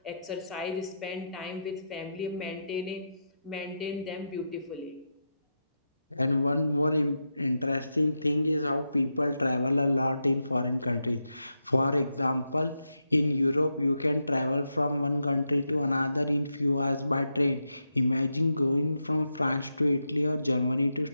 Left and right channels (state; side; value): inverted; both; correlation -0.86